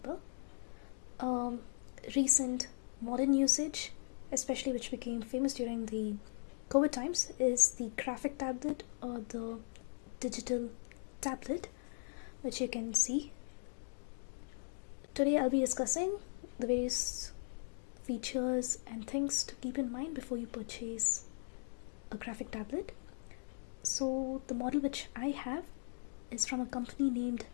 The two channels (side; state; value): right; silent; digital silence